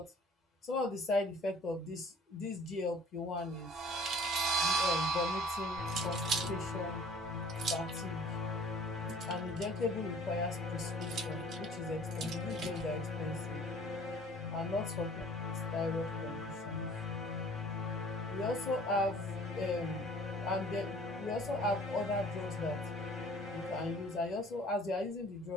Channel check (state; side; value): normal; both; correlation 0.51